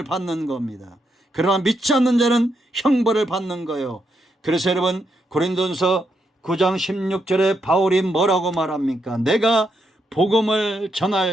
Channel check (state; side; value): normal; both; correlation 0.80